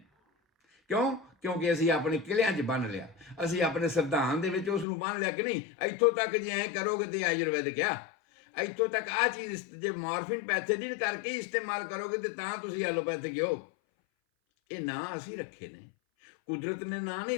ਕਿਉਂਕਿ ਅਸੀਂ ਆਪਣੇ ਕਿਲਿਆਂ 'ਚ ਬੰਨ ਲਿਆ, ਅਸੀਂ ਆਪਣੇ ਸੰਵਿਧਾਨ ਦੇ ਵਿੱਚ ਉਸ ਨੂੰ ਬੰਨ ਲਿਆ ਕਿ ਨਹੀਂ ਇੱਥੋਂ ਤੱਕ ਜੇ ਐਂ ਕਰੋਗੇ ਤੇ ਆਯੁਰਵੈਦਿਕ ਆ, ਇੱਥੋਂ ਤੱਕ ਆਹ ਚੀਜ਼ ਜੇ ਮਾਰਫਿਨ ਪੈਥੇਡਿਨ ਕਰਕੇ ਇਸਤੇਮਾਲ ਕਰੋਗੇ ਤੇ ਤਾਂ ਤੁਸੀਂ ਐਲੋਪੈਥਿਕ ਹੋ। ਇਹ ਨਾਂ ਅਸੀਂ ਰੱਖੇ ਨੇ, ਕੁਦਰਤ ਨੇ ਨਾਂ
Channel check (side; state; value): right; drops out; at 4.9 s